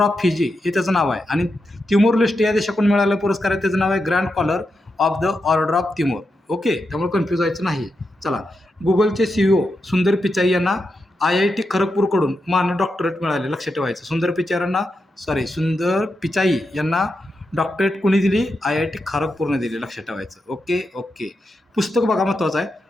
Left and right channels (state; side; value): normal; both; correlation 0.87